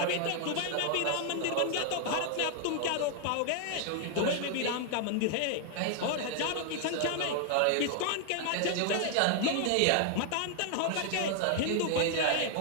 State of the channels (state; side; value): different; both; correlation 0.00